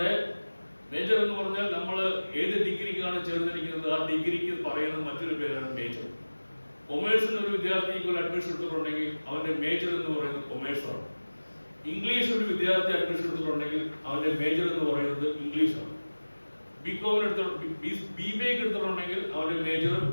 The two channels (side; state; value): both; inverted; correlation -1.00